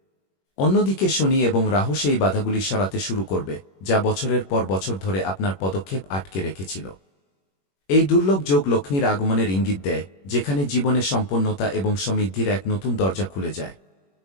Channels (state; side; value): late; right; 21 ms